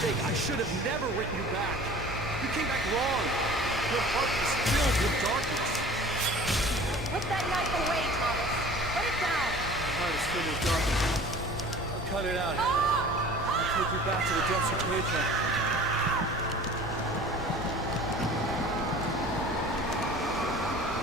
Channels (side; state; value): both; normal; correlation 0.44